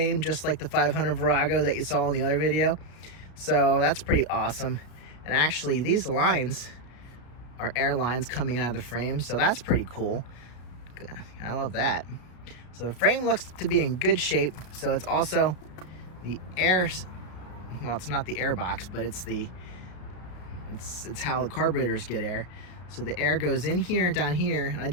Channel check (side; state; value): right; late; 33 ms